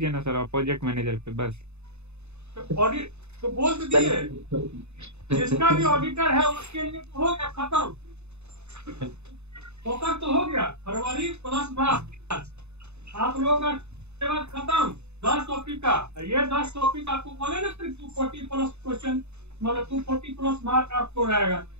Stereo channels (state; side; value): late; left; 0.81 ms